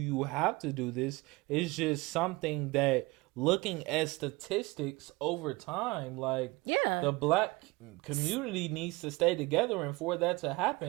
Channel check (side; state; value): left; quieter; 23.2 dB